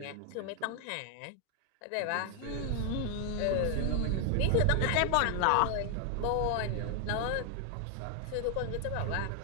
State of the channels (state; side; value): different; both; correlation 0.00